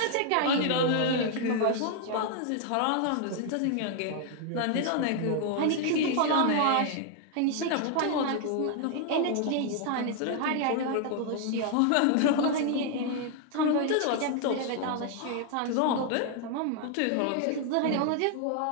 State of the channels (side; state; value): both; different; correlation 0.00